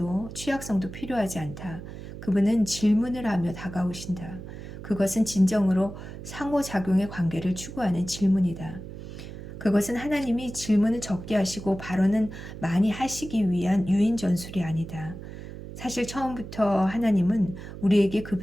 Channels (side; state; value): right; noise; hum, 12 dB below the sound